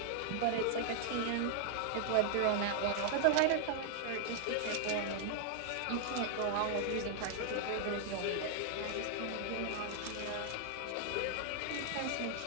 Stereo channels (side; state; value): both; different; correlation 0.00